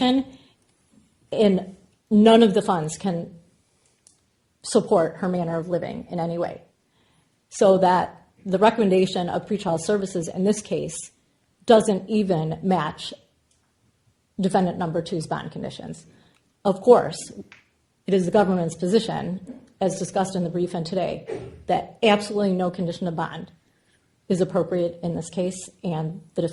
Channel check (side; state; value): both; identical; correlation 1.00